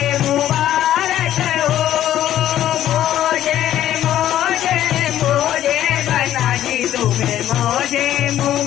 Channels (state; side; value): quieter; right; 12.1 dB